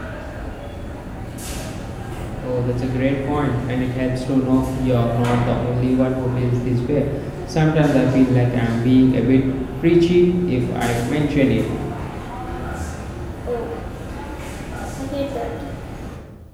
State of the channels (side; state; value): both; identical; correlation 1.00